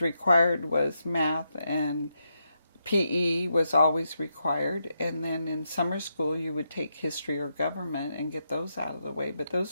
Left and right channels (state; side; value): inverted; both; correlation -0.83